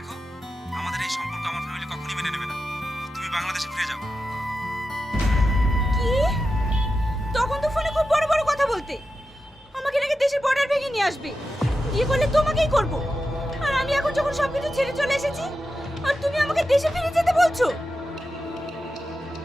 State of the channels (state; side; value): normal; both; correlation 0.90